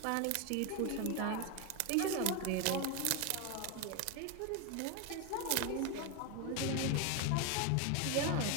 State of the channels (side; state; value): both; different; correlation 0.02